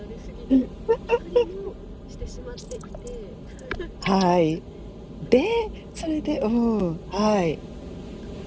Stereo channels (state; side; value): identical; both; correlation 1.00